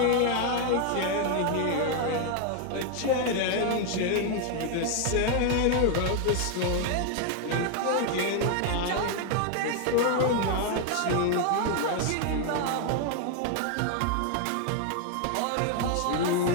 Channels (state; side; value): different; both; correlation 0.00